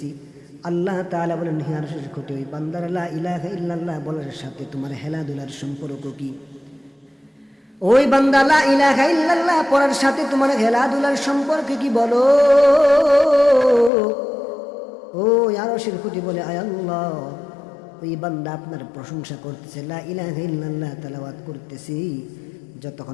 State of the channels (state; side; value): drops out; right; at 13.9 s